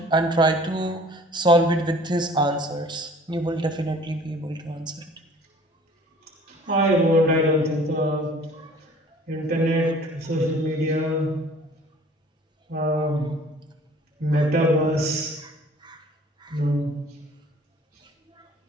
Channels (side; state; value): both; normal; correlation 0.50